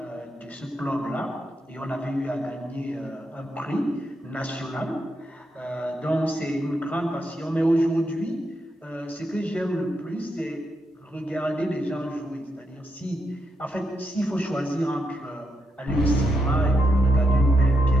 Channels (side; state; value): both; normal; correlation 0.82